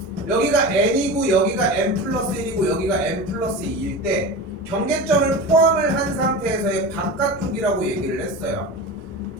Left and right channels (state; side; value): normal; both; correlation 0.28